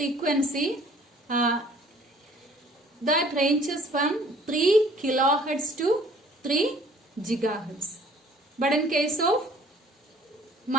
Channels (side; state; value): both; normal; correlation 0.55